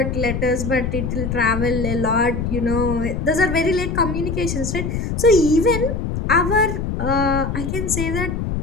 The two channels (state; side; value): noise; left; rumble, 3 dB below the sound